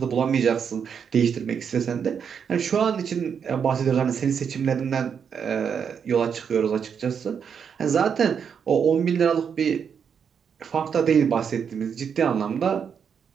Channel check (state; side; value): quieter; left; 7.1 dB